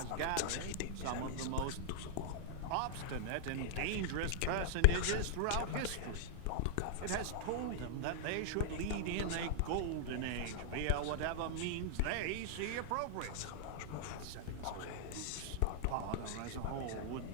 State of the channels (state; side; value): different; both; correlation -0.01